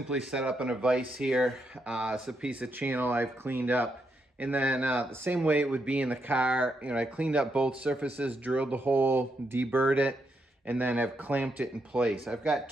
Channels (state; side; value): normal; both; correlation 0.81